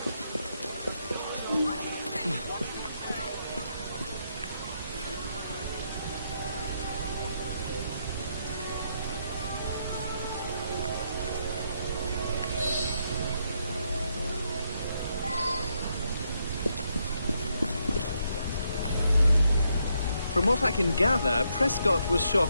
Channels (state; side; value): inverted; both; correlation -0.78